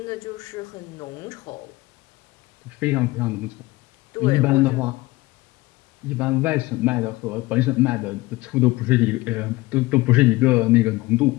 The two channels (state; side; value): quieter; right; 20.5 dB